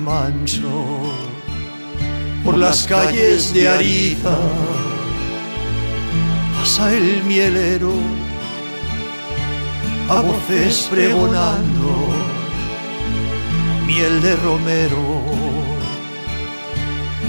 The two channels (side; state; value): both; inverted; correlation -1.00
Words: Por las calles de Ariza pasa el mielero, a voces pregonando miel de romero,